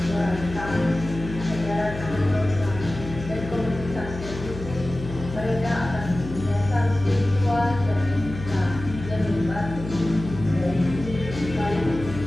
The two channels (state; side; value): noise; left; hum, 10 dB below the sound